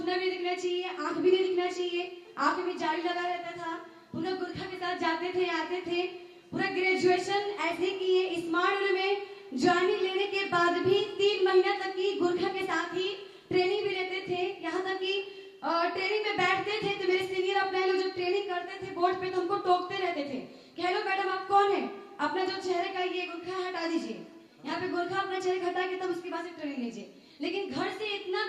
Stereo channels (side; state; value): both; identical; correlation 1.00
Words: भी दिखना चाहिए, आंख भी नहीं दिखना चाहिए, आंख में जाली लगा रहता था। पूरा गुरखा के साथ जाते थे, आते थे। पूरा ग्रेजुएशन ऐसे किए। स्मार्ट में ज्वाइनिंग लेने के बाद भी 3 महीना तक की गुरखा के साथ ही ट्रेनिंग भी लेते थे। यहाँ तक कि ट्रेनिंग में बैठते थे तो मेरे सीनियर अपने लोग जब ट्रेनिंग करते थे बोर्ड पे तो हमको टोकते रहते थे कि हेलो मैडम, आप कौन है? अपना जो चेहरे का ये गुरखा हटा दीजिए। यहाँ पे गुरखा अपना चेहरे हटा के तब उसके बाद से ट्रेनिंग लीजिए। लेकिन घर से इतना